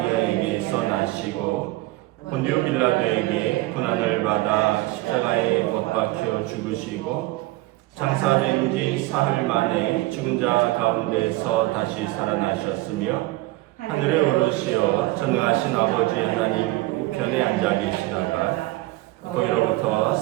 나시고 본디오 빌라도에게 고난을 받아 십자가에 못 박혀 죽으시고 장사된 지 사흘 만에 죽은 자 가운데서 다시 살아나셨으며 하늘에 오르시어 전능하신 아버지 하나님 우편에 앉아 계시다가 거기로부터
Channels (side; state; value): left; quieter; 19.4 dB